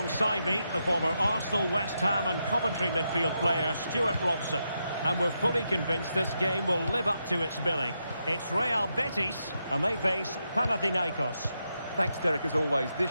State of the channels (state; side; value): inverted; both; correlation -0.84